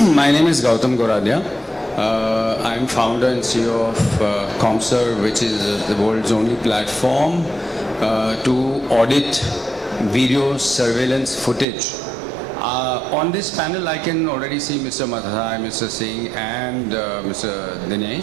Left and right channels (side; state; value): left; drops out; at 11.7 s